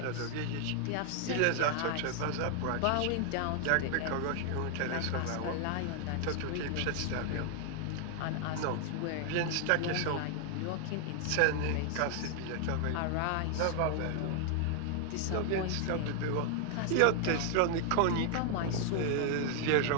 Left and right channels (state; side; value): different; both; correlation 0.00